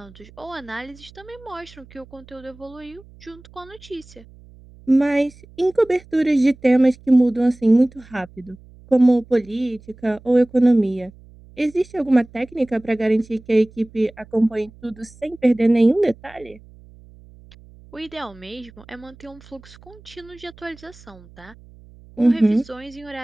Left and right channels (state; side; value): noise; right; hum, 23 dB below the sound